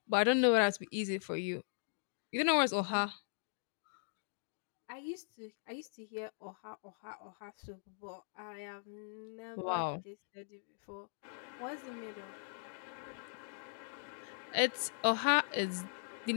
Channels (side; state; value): right; silent; digital silence